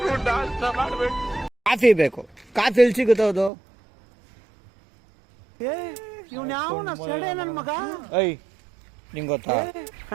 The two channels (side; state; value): left; drops out; at 3.5 s